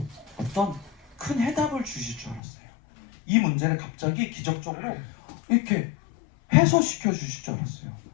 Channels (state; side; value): drops out; right; at 2.4 s